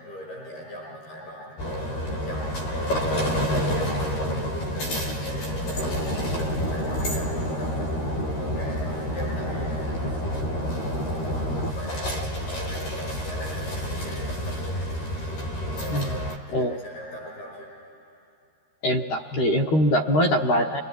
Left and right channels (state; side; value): late; right; 13 ms